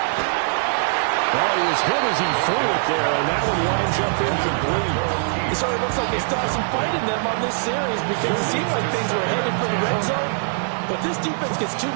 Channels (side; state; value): left; silent; 64 dB below the other